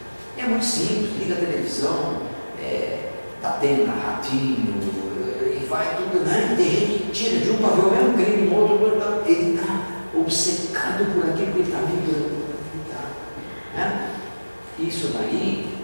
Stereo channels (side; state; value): both; inverted; correlation -1.00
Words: É muito simples, liga a televisão, está tendo ratinho, e vai tudo, né? Tem gente que tira de um para ver o mesmo crime, no outro, ele está obcecado por aquilo que ele está vibrando. Né? Isso daí,